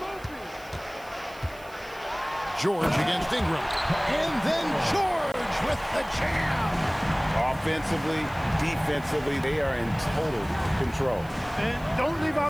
George against Ingram. And then George with the jam. Offensively, defensively, they are in total control. And don't leave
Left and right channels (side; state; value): right; noise; hiss, 23 dB below the sound